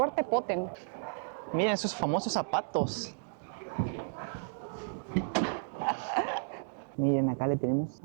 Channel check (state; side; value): silent; left; digital silence